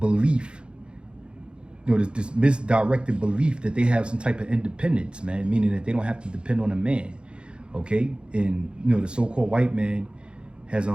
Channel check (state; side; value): late; left; 0.054 ms